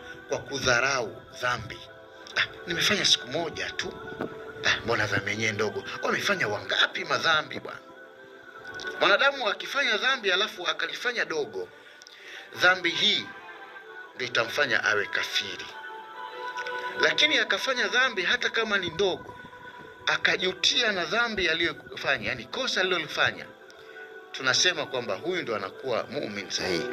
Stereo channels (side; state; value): both; identical; correlation 1.00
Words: kwa kudharau dhambi. Nimefanya siku moja tu, mbona dhambi yenyewe ndogo? Wamefanya wangapi madhambi bwana? Mwanadamu akifanya dhambi alafu akalifanya dogo, dhambi hii ndio itamfanya awe kafiri. Lakini akafanya dhambi hata kama ni ndogo, akajutia na dhambi aliyofanya, yani kosa alilofanya, tunasema kwamba huyu ndo anakuwa muumini sahihi.